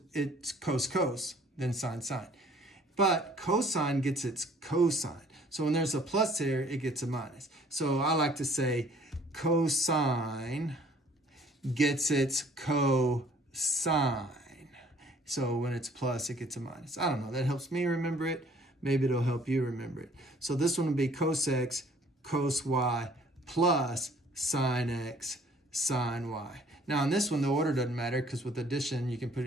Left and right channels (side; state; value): both; normal; correlation 0.57